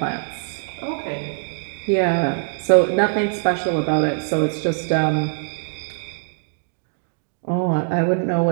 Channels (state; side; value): silent; left; digital silence